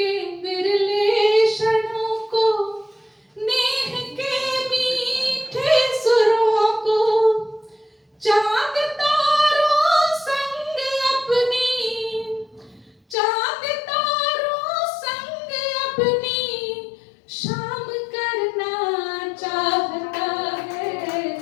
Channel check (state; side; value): drops out; right; at 13.2 s